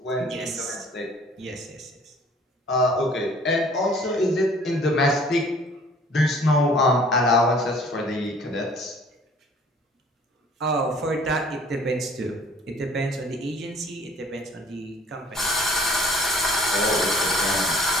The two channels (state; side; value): normal; both; correlation 0.53